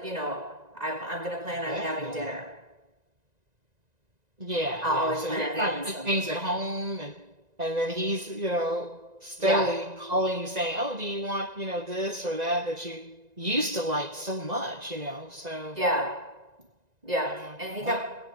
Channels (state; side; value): late; left; 1.9 ms